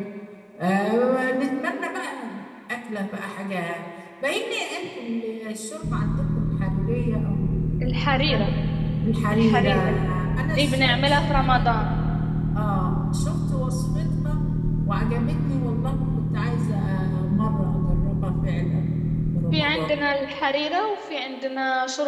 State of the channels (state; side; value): identical; both; correlation 1.00